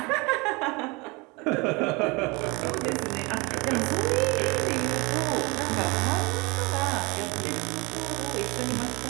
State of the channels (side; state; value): left; quieter; 26.7 dB